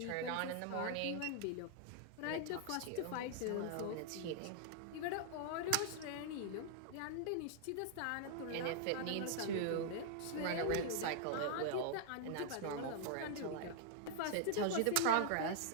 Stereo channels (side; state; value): both; different; correlation -0.01